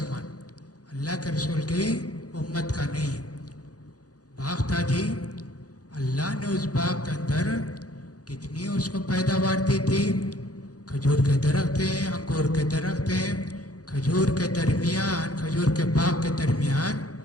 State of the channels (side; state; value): right; late; 0.68 ms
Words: اللہ کے رسول کی امت کا نہیں. باغ تھا جی، اللہ نے اس باغ کے اندر کتنی اس کو پیداوار دی تھی. کھجور کے درخت ہیں، انگور کے درخت ہیں، کھجور کے درمیان، کھجور کے باغ کے درمیان